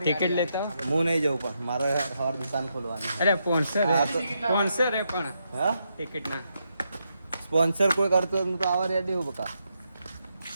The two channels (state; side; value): inverted; both; correlation -0.81